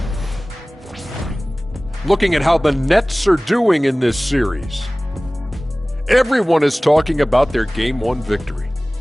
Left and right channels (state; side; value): normal; both; correlation 0.98